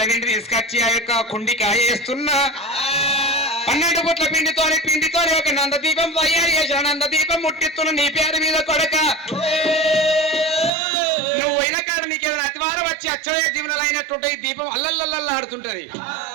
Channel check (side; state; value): left; drops out; at 10.7 s